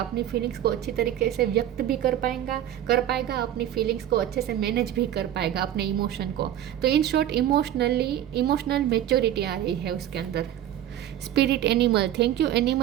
फीलिंग्स को अच्छी तरीके से व्यक्त भी कर पाएगा, अपनी फीलिंग्स को अच्छे से मैनेज भी कर पाएगा, अपने इमोशन को। तो इन शॉर्ट इमोशनल मेच्योरिटी आ रही है उसके अंदर। Spirit animal, thank you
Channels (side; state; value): left; quieter; 11.6 dB